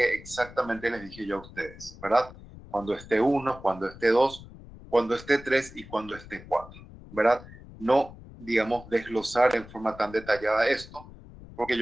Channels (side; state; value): left; noise; rumble, 18 dB below the sound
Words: exactamente les dije yo a ustedes, ¿verdad? Cuando esté 1, cuando esté 2, cuando esté 3 y cuando esté 4, ¿verdad? No, digamos, desglosar en forma tan detallada esto, porque